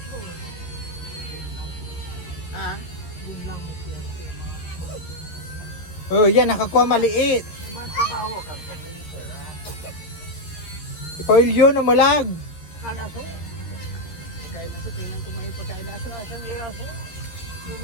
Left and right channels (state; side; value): late; right; 13 ms